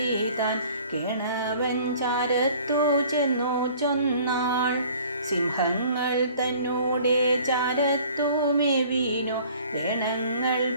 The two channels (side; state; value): both; inverted; correlation -0.51